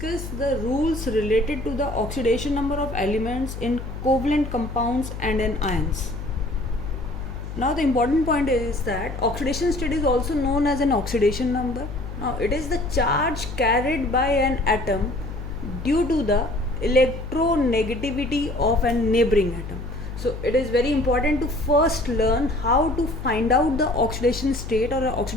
the rules related to the oxidation number of elements in covalent compounds and in ions. Now, the important point is that oxidation state is also known as an oxidation number. Now, it is the charge carried by an atom due to the electronegativity of a neighboring atom. So, it is very important to first learn how to find out the oxidation state or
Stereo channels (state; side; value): noise; left; hum, 8 dB below the sound